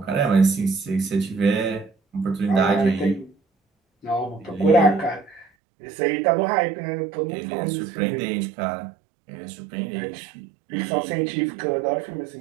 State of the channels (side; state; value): left; drops out; at 5.5 s